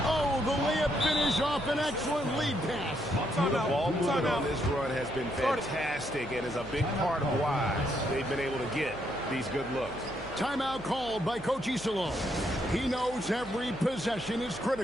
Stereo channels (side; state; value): right; noise; hum, 18 dB below the sound